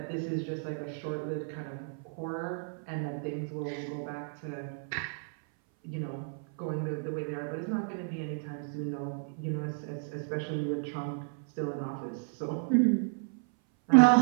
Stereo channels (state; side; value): silent; left; 56 dB below the other